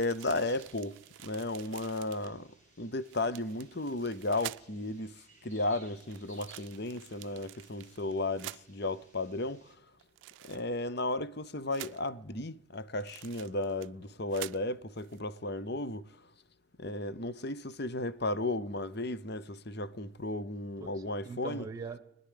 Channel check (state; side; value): normal; both; correlation -0.14